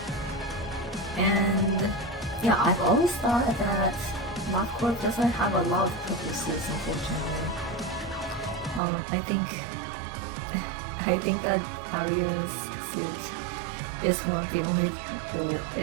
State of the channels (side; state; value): left; drops out; at 8.8 s